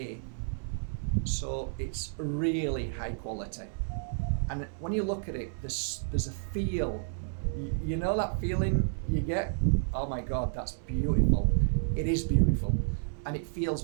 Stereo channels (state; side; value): silent; left; digital silence